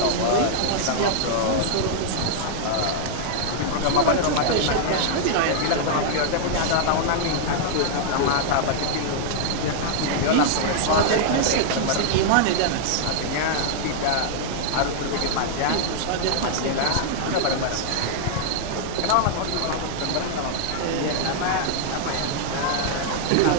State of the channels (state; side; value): different; both; correlation -0.01